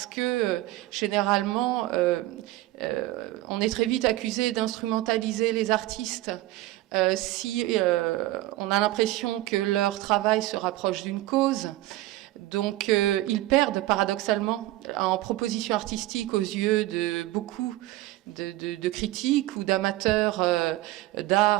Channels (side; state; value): left; quieter; 17.0 dB